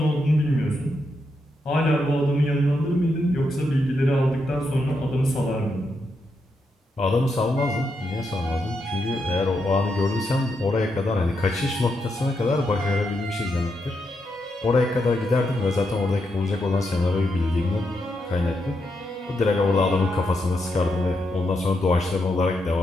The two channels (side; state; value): both; normal; correlation 0.82